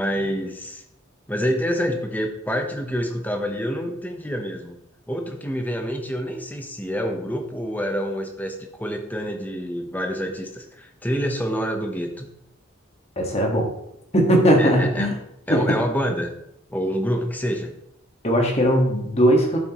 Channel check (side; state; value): both; normal; correlation 0.67